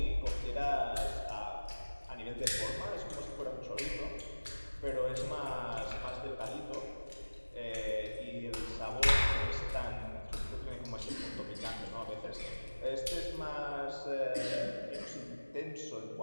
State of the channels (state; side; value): inverted; both; correlation -1.00